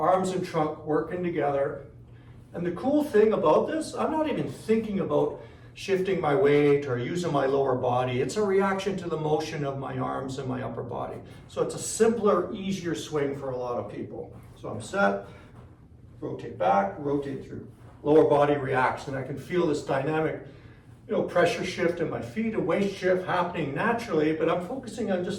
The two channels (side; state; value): both; identical; correlation 1.00